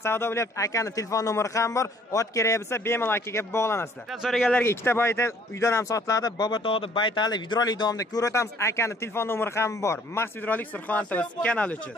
savdo bo'lyapti. Akani telefon nomeri ham bor. Ot kerak bo'lsa bemalol akaga bog'lanasizlar. So'raganlarga ikkita baytal uydan ham sotiladi. Bobotog'da baytali videolik davomida ko'rsatamiz. Akani telefon nomeri ham bor. Max videolik Surxondaryo kanali uchun.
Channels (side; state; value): both; normal; correlation 0.58